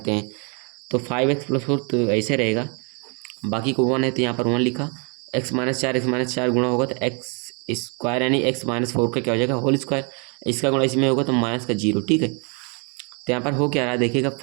हैं तो 5x प्लस 4 तो ऐसे रहेगा, बाकी को 1 है तो यहाँ पर 1 लिखा, x माइनस 4 गुणा होगा तो x स्क्वायर यानी x माइनस 4 का क्या हो जाएगा होल स्क्वायर, इसका गुणा इसमें होगा तो माइनस का 0, ठीक है। तो यहाँ पर हो क्या रहा है, देखिएगा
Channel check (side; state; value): left; quieter; 35.3 dB